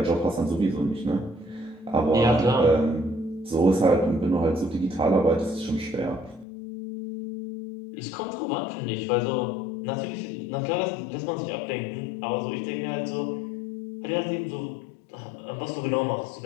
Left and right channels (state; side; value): drops out; right; at 6.5 s